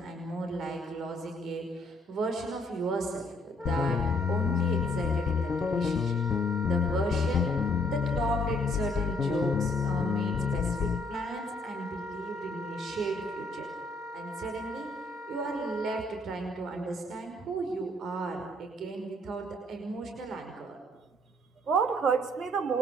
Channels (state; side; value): normal; both; correlation 0.66